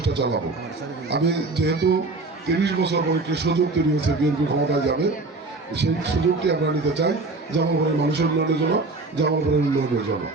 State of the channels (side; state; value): left; quieter; 3.4 dB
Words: চালাবো। আমি যেহেতু 30 বছর পরে একটি সুযোগ তৈরি হয়েছে বিএনপি ক্ষমতায় যাবে, সেই সুযোগটি আমরা নিতে চাই জামালপুরের মানুষের উন্নয়নের জন্য, জামালপুরের উন্নয়নের জন্য।